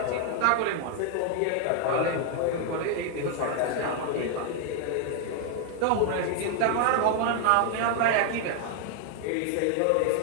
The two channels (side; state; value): both; different; correlation 0.00